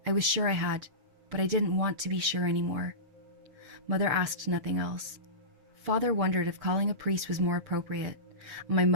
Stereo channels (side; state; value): left; late; 7.4 ms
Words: I was sure I had, but I didn't want to be sure anymore. Mother asked nothing else. Father wondered if calling a priest was more appropriate, and my